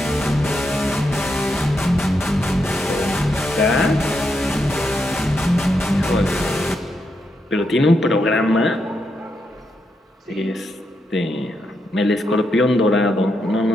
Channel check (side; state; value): both; normal; correlation 0.82